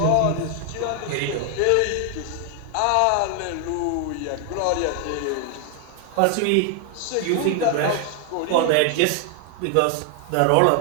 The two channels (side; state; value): both; different; correlation 0.00